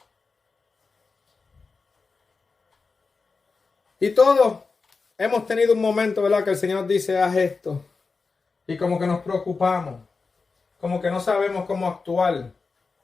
Y todos hemos tenido un momento, ¿verdad?, que el Señor dice, haz esto. Y como que nos preocupamos. Como que no sabemos cómo actuar.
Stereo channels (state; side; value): quieter; right; 4.4 dB